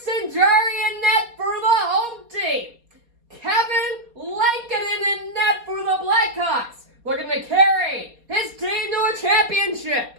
Jarry in net for the home team. Kevin Lankinen in net for the Blackhawks, looking to carry his team to a championship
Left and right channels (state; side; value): late; left; 4.2 ms